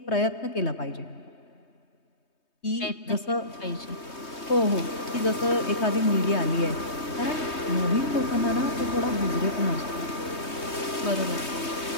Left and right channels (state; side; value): late; right; 3.2 ms